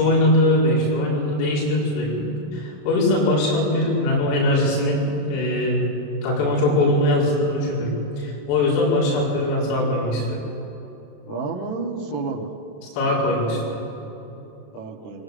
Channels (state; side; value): late; right; 27 ms